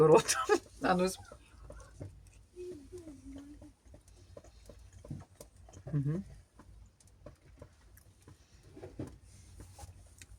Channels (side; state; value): both; identical; correlation 1.00